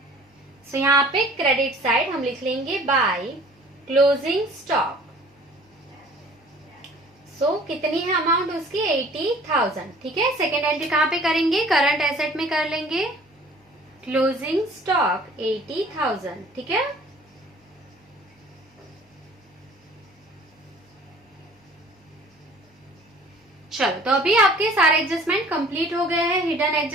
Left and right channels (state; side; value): normal; both; correlation 0.51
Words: सो यहाँ पे क्रेडिट साइड हम लिख लेंगे बाय क्लोजिंग स्टॉक। सो कितनी है अमाउंट उसकी? 80,000, ठीक है। सेकेंड एंट्री कहाँ पे करेंगे? करंट एसेट में कर लेंगे क्लोजिंग स्टॉक 80,000, ठीक है। चलो तो अभी आपके सारे एडजस्टमेंट कंप्लीट हो गए हैं, हिडन